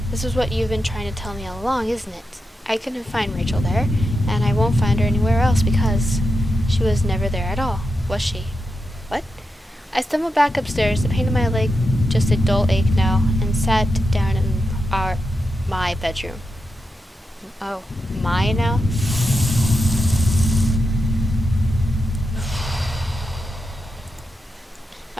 This is what you've been trying to tell me all along, isn't it? I couldn't find Rachel there, and I won't find her anywhere else because she was never there at all, was she? What? I stumbled back upstairs, the pain in my leg just a dull ache now, and sat down in my bedroom. Oh, my now?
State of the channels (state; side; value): normal; both; correlation 0.88